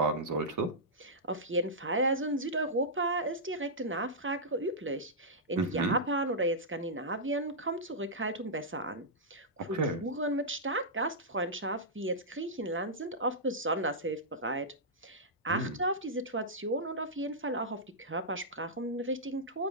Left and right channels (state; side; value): normal; both; correlation -0.12